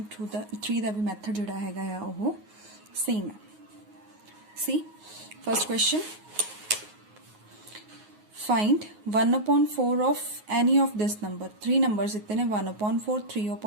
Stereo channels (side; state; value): left; late; 9.5 ms